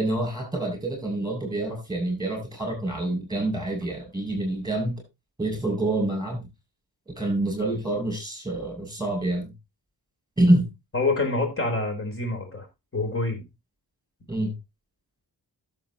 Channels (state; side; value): normal; both; correlation 0.58